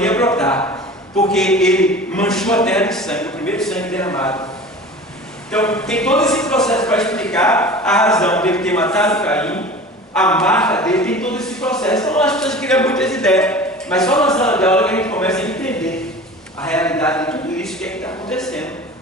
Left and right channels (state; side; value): normal; both; correlation 0.38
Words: ia brotar, porque ele manchou a terra de sangue, o primeiro sangue derramado. Então, tem todo esse processo para explicar a razão dele ter matado Caim, a marca dele, tem todo esse processo. Então, as pessoas criam muitas ideias, mas só na sala de aula que a gente começa a entender a realidade de tudo isso, o que é que está acontecendo